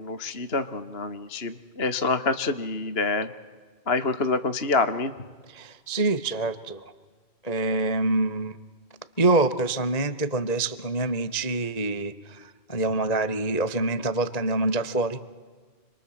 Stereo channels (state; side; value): late; right; 1.9 ms